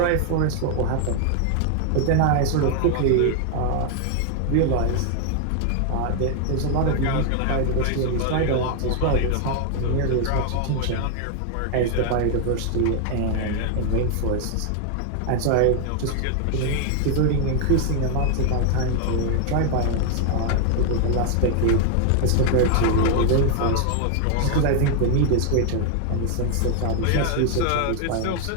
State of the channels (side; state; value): both; different; correlation 0.00